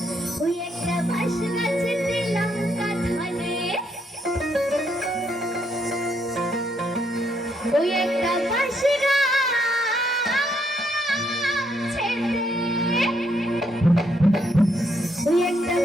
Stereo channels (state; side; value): normal; both; correlation 0.74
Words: ওই একটা বাঁশ গাছেতে লঙ্কা ধরে, ওই একটা বাঁশ ওই একটা